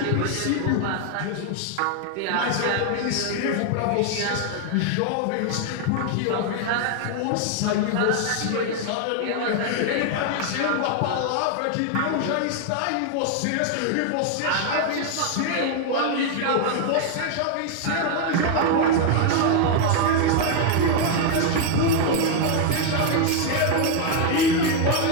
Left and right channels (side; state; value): both; different; correlation 0.01